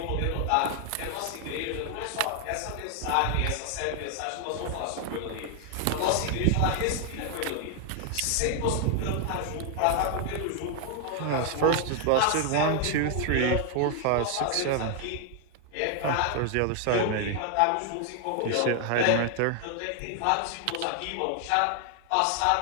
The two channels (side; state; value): both; different; correlation 0.00